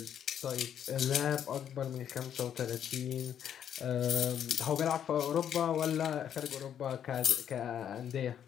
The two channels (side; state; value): right; quieter; 9.3 dB